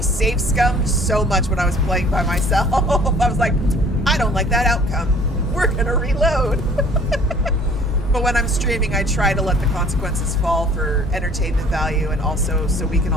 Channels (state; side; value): normal; both; correlation 0.53